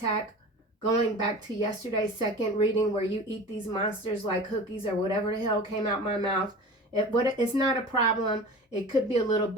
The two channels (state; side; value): normal; both; correlation 0.36